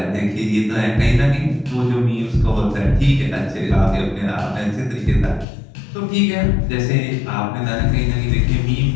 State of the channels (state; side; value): drops out; right; at 5.5 s